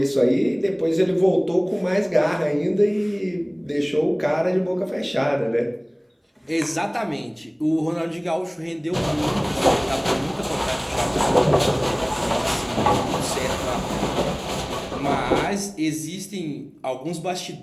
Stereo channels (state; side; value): identical; both; correlation 1.00